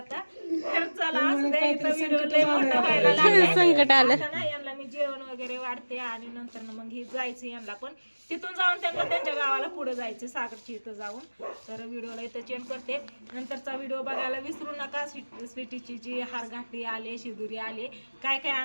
तर चला असू द्या इथं व्हिडिओ लय मोठा व्हायला लागलाय. संकट आलं आता ना यांना मी जेवण वगैरे वाढते आणि नंतर ना मग ही जायचं यांना पण तिथून जाऊन त्यांना त्यांच्या गावाला पुढे जायचं सागरच्या इथं जाऊन तर व्हिडिओला इथं चेंज करते नंतरचा व्हिडिओ बघायला विसरू नका स्वीटीची जी हारघाटी आले शिदुरी आले काय काय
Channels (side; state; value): both; inverted; correlation -1.00